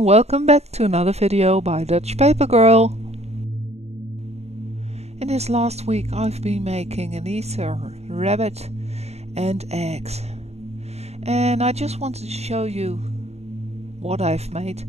welcome back to another video by dutchpapergirl. In this last week I've been making an Easter rabbit and eggs. And I just wanted to show you what I've made.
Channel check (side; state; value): left; late; 0.31 ms